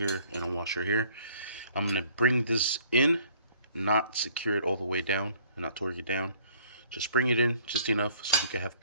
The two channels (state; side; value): inverted; both; correlation -0.58